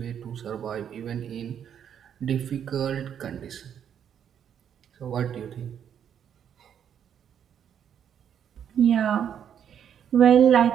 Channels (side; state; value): left; quieter; 8.8 dB